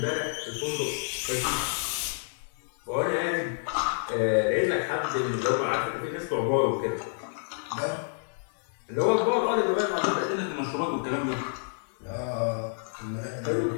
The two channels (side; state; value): right; silent; digital silence